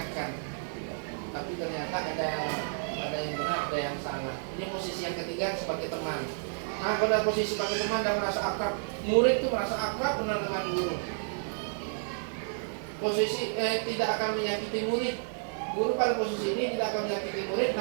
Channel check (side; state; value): left; silent; digital silence